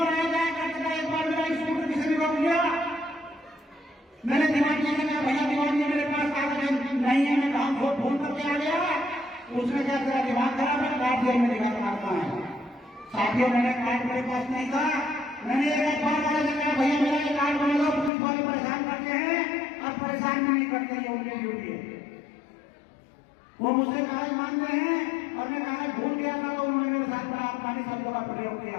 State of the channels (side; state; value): right; drops out; at 18.1 s